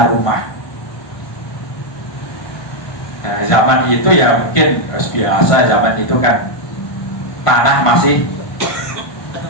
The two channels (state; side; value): late; right; 1.5 ms